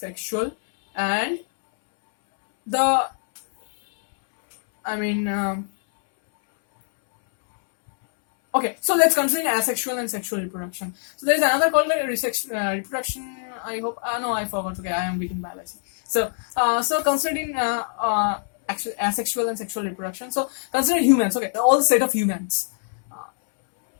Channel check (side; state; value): right; silent; 63 dB below the other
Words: and okay, so let's consider asexual and sexual reproduction. So there is another called reproduction. I hope. No, I forgot. Okay, I am weak in biology. So considering actually asexual and sexual reproduction. So consider humans. Okay, all the set of humans.